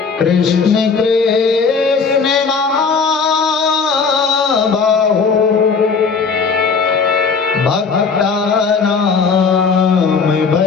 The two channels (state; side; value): quieter; right; 5.2 dB